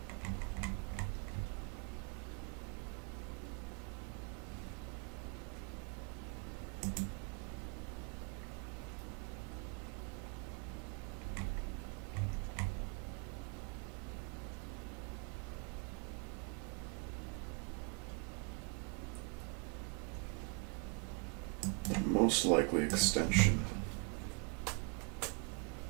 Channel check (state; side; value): quieter; left; 35.3 dB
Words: Most likely extension.